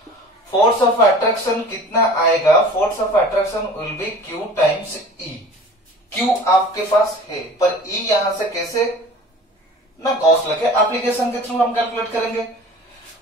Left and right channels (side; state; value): both; normal; correlation 0.43